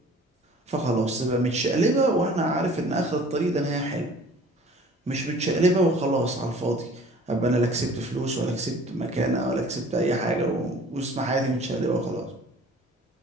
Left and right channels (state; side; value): normal; both; correlation 0.49